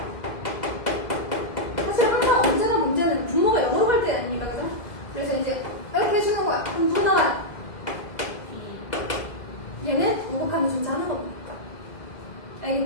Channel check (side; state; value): right; late; 2.0 ms